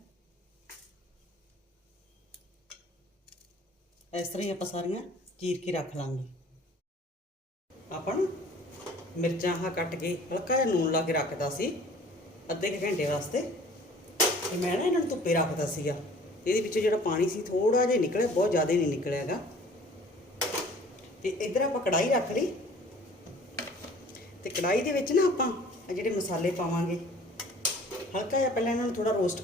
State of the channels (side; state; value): both; normal; correlation 0.50